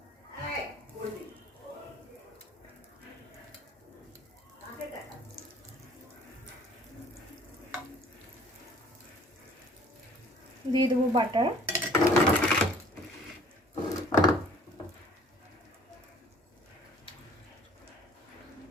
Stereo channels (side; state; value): both; normal; correlation 0.53